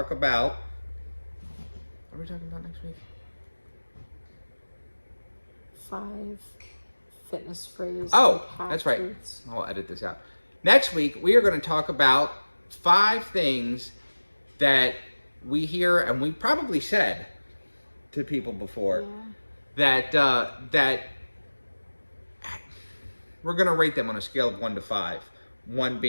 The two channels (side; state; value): both; inverted; correlation -1.00